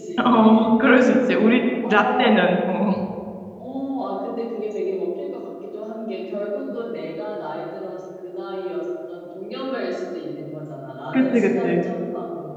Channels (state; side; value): identical; both; correlation 1.00